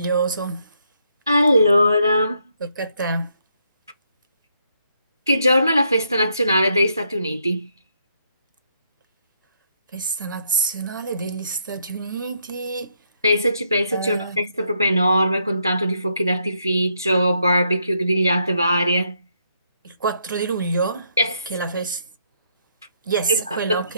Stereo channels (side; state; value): both; inverted; correlation -0.75